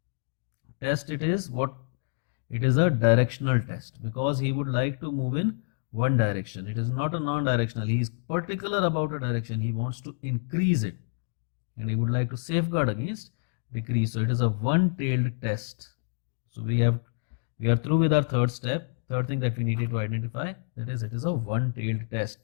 test it is. What it is, a directional test, because he would like to move in one direction. It is not a non-directional. He is particular about a direction. He wants to increase it, and he would like to safeguard against decrease. So it is a one-tailed test. So we are through with our third step. Third thing that we needed to identify, that is, it is a one-tailed test.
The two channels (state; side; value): silent; right; digital silence